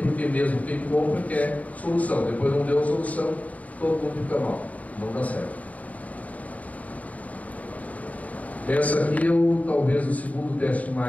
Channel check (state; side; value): late; right; 0.071 ms